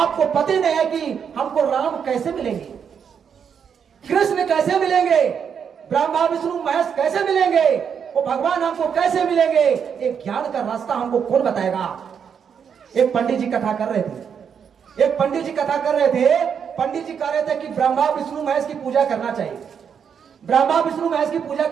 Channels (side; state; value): left; quieter; 7.3 dB